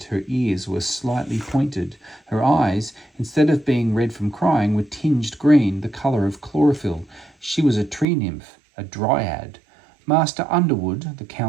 her ears were slightly pointed. Her eyes, instead of being red from crying, were tinged green, the colour of chlorophyll. She was a tree nymph, a dryad. "Master Underwood," the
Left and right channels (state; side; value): drops out; left; at 8.1 s